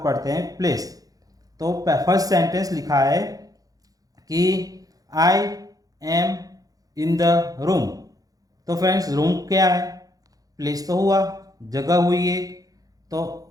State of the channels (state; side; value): late; left; 0.17 ms